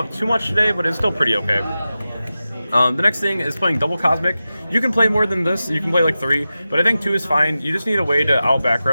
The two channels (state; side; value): inverted; both; correlation -0.93